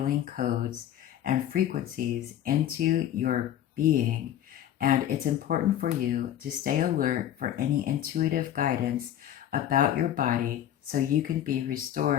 codes and frequencies into your being, and it's important for you to stay alert for any intuitive guidance about your body so you can be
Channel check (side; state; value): right; quieter; 11.2 dB